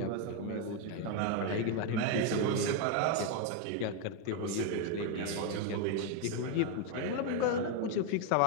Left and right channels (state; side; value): different; both; correlation 0.01